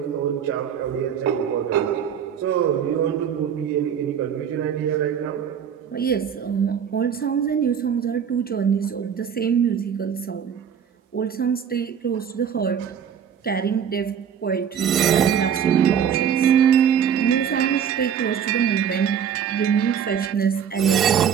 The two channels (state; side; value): quieter; left; 8.1 dB